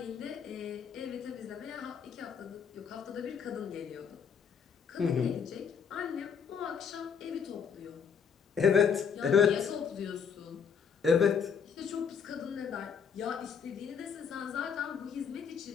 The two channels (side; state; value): right; quieter; 6.7 dB